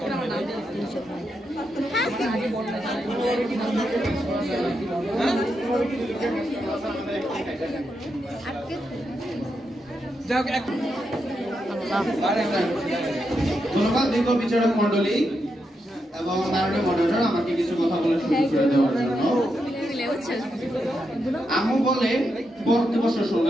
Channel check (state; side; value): normal; both; correlation 0.84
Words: ধন্যবাদ দীর্ঘ বিচারক মন্ডলী। এবং মাননীয় মডারেটর আমাকে কিছু কথা বলে শুরু করে দেওয়ার জন্য। আম্মু বলে পড়তে বসে